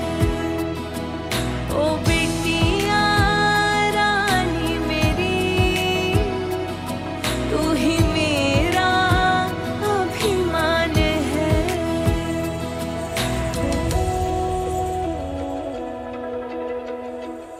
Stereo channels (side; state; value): both; identical; correlation 1.00